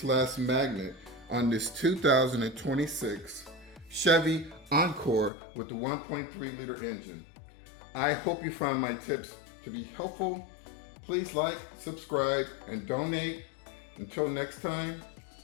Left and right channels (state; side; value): drops out; right; at 5.3 s